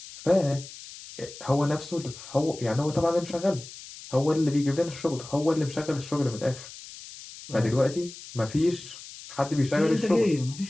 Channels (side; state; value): left; noise; hiss, 15 dB below the sound